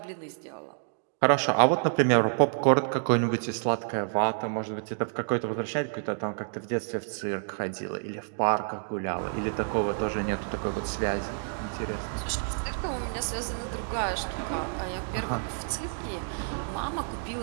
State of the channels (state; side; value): silent; left; digital silence